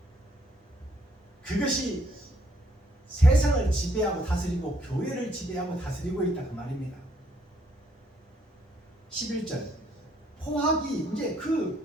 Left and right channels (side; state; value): both; normal; correlation 0.69